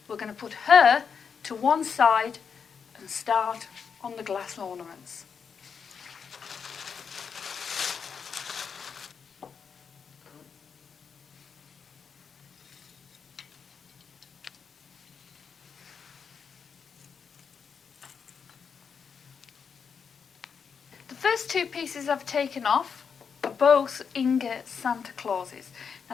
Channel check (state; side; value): quieter; right; 6.4 dB